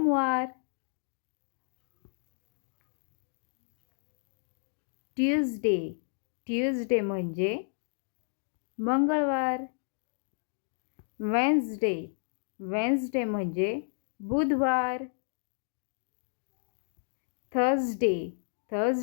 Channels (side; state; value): right; silent; digital silence